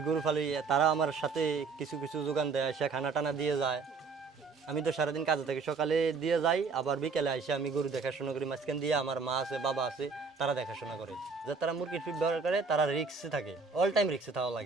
গরু ফালি, তারা আমার সাথে কিছু কিছু যোগান দেয়, সে খানা টানা দিয়ে যায়। আমি তো সারাদিন কাজে থাকি, সকালে দিয়ে যাই, আবার বিকেলে এসে আমি গরু দেখাশোনা করি। মাঝখান দিয়ে আমার মা আছে, বাবা আছে, তারা দেখাশোনা করে। যে তারা মুরগির ফিড ব্যবহার করে, তারা রিক্সে থাকে, অল টাইম রিক্সে থাকা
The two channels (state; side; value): quieter; left; 4.8 dB